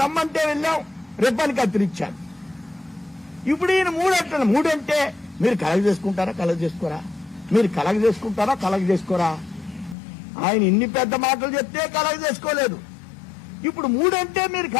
రమ్మంటే వెళ్ళాం, రిబ్బన్ కత్తిరించాడు. ఇప్పుడు ఈయన 3 అంటున్నాడు. 3 అంటే మీరు కలగ చేసుకుంటారా, కలగ చేసుకోరా? మీరు కలగ చేసుకుంటారా, కలగ చేసుకోరా? ఆయన ఇన్ని పెద్ద మాటలు చెప్తే కలగ చేసుకోలేదు. ఇప్పుడు 3 అంటే మీరు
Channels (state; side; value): drops out; right; at 10.0 s